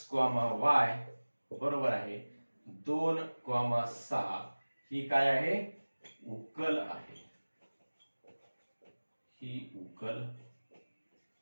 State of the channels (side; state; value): both; inverted; correlation -1.00